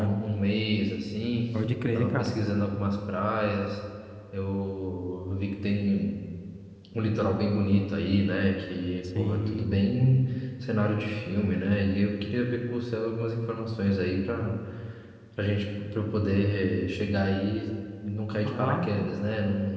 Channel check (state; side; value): identical; both; correlation 1.00